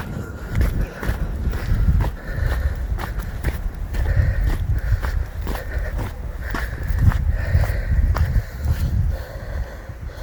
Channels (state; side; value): identical; both; correlation 1.00